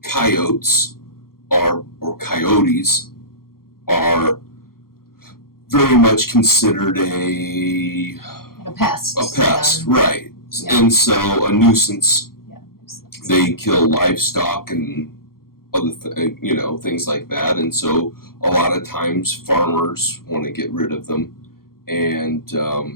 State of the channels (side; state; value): right; late; 0.93 ms